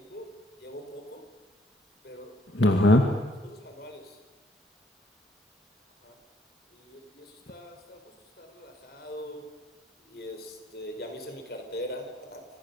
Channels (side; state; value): both; normal; correlation 0.67